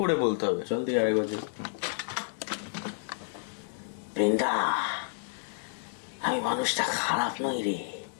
বলতে হবে। চল তুই আরেক বছর। বৃন্দা, আমি মানুষটা খারাপ নই রে।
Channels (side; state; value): right; silent; digital silence